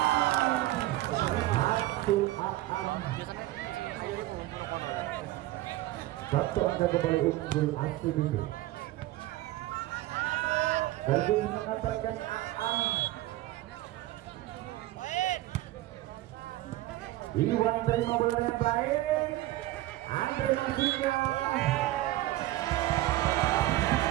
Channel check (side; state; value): left; quieter; 16.5 dB